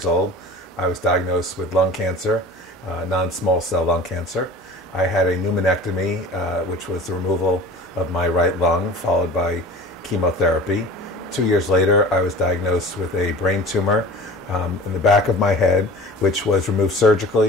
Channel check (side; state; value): right; noise; hum, 29 dB below the sound